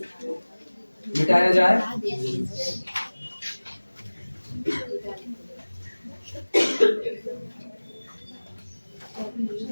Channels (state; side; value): inverted; both; correlation -1.00